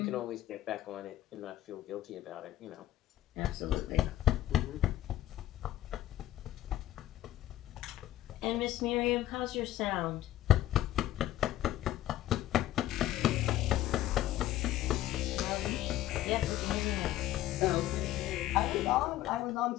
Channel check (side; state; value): right; quieter; 13.9 dB